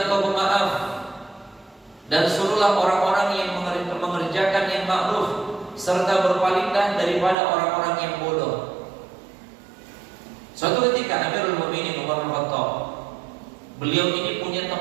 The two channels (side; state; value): left; drops out; at 7.4 s